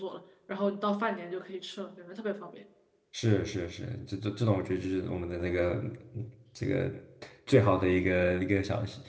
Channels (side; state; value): both; identical; correlation 1.00